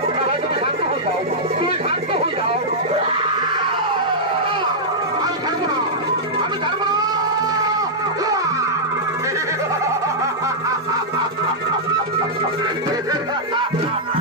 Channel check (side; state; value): both; normal; correlation -0.09